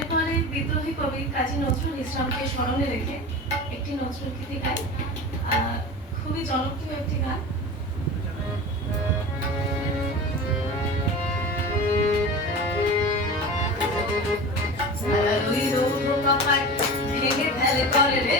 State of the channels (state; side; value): normal; both; correlation 0.32